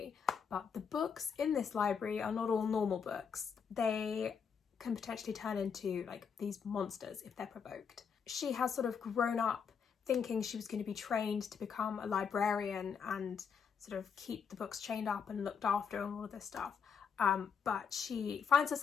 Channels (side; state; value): right; quieter; 6.7 dB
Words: But the books in this library are not all normal books. They can potentially turn into, like, these monsters if they're provoked. She has sort of grown up thinking she was going to be trained to become a librarian and sort of keep the books chained up and looked after and all of this stuff. But she finds